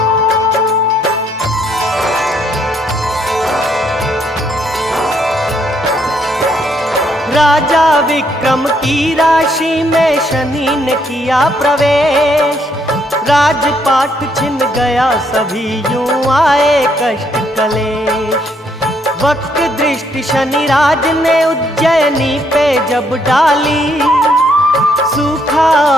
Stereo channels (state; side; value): normal; both; correlation 0.71